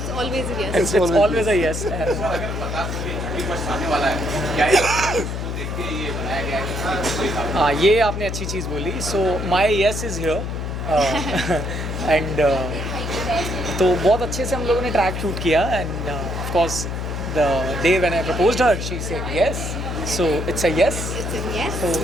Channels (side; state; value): left; noise; hum, 4 dB below the sound